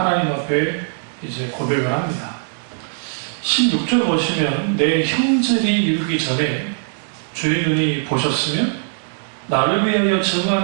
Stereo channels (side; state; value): left; silent; digital silence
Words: 앞에 이제 고백을 합니다. 16절 보시면 내 형들이 이르기 전에 주의 눈이 보셨으며 나를 위하여